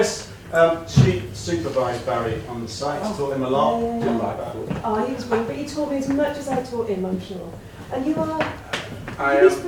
She supervised Barry on the site. Taught him a lot. Yeah. Didn't like that. Oh, he was brilliant, but you taught me as much as I taught him, I'm sure. And you are I his am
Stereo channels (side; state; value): both; identical; correlation 1.00